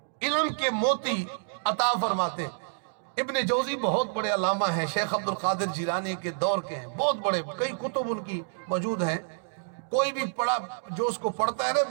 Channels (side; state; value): left; silent; digital silence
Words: علم کے موتی عطا فرماتے۔ ابن جوزی بہت بڑے علامہ ہیں، شیخ عبدالقادر جیلانی کے دور کے ہیں، بہت بڑے، کئی کتب ان کی موجود ہیں۔ کوئی بھی پڑھا جو اس کو پڑھتا ہے نا